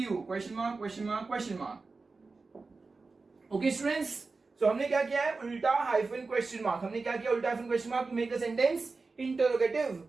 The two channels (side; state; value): left; quieter; 4.0 dB